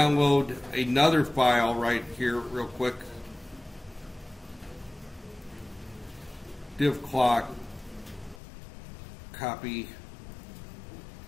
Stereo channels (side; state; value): right; drops out; at 8.4 s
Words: another file right here real quick. Div clock, copy.